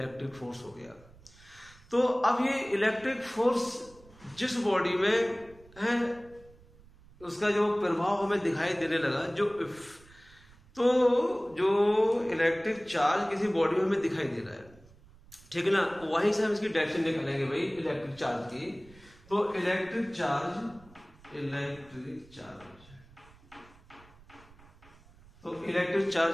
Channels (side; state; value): right; noise; rumble, 25 dB below the sound